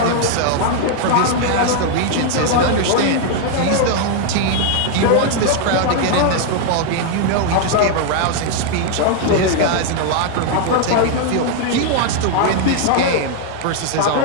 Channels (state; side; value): different; both; correlation 0.00